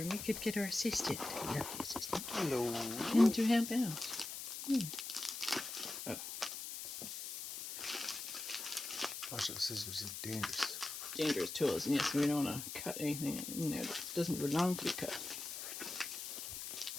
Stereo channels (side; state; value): left; noise; hiss, 7 dB below the sound